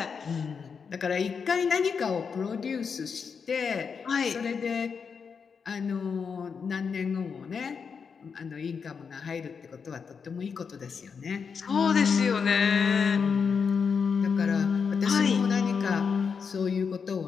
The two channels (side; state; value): right; quieter; 6.0 dB